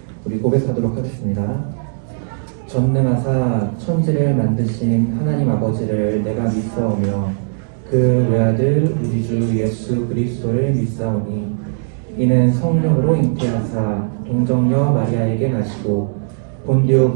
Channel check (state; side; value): silent; left; digital silence